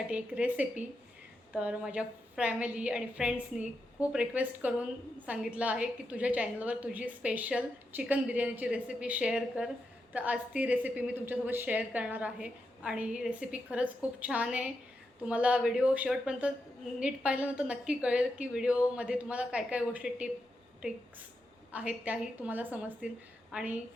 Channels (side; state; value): both; normal; correlation 0.86